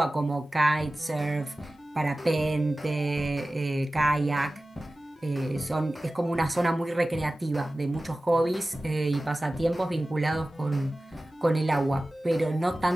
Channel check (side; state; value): both; normal; correlation 0.96